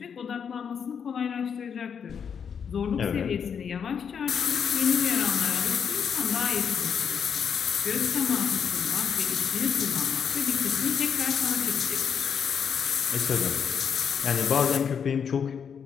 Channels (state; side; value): quieter; right; 7.2 dB